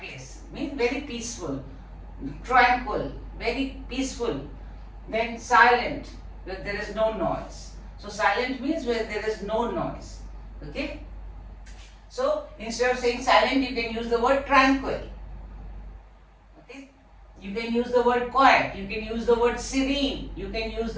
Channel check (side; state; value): both; identical; correlation 1.00